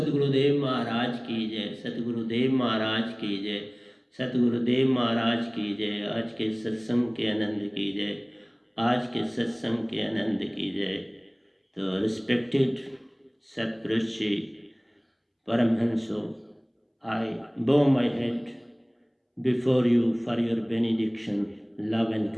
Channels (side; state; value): both; identical; correlation 1.00